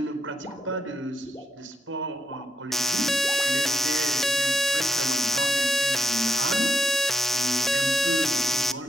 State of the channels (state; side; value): normal; both; correlation 0.80